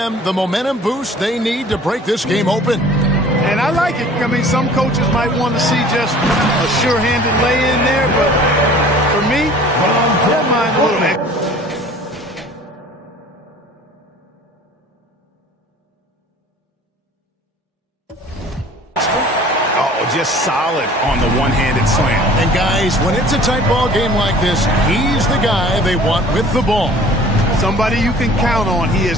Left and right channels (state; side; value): normal; both; correlation 0.48